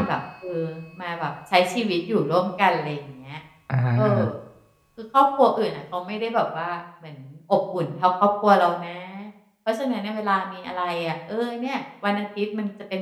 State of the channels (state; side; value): identical; both; correlation 1.00